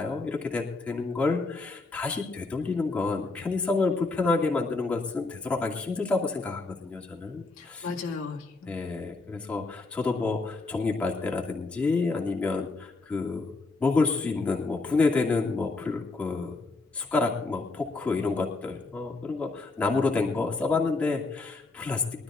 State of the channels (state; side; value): quieter; right; 3.5 dB